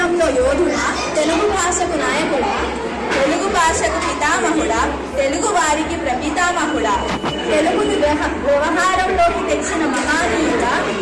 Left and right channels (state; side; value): identical; both; correlation 1.00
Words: యోధుడా, తెలుగు భాషకు నాయకుడా, తెలుగు భాషకు పితామహుడా, తెలుగు వారికి ప్రపితామహుడా, తెలుగుని వ్యవహారంలోకి తెచ్చిన మహానీయుడా,